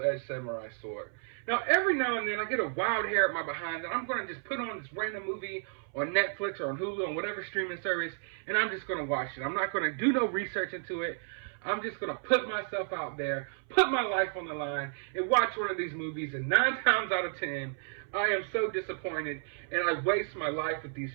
samurai sword. Now, every now and then, I get a wild hair at my behind that I'm going to just put on this random movie on Netflix or on Hulu, on whatever streaming service, and I'm just going to watch it. I'm not going to do no research into it. I'm just going to put myself out there, put my life on the line, and watch one of these movies. And 9 times out of 10, I am so disappointed, and I waste my life with these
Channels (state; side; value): silent; left; 56 dB below the other